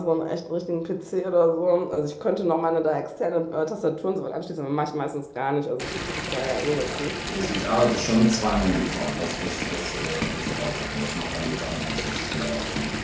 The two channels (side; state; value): both; identical; correlation 1.00